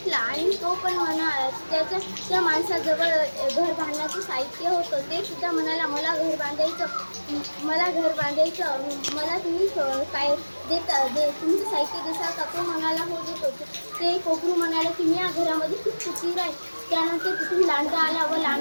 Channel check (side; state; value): both; inverted; correlation -1.00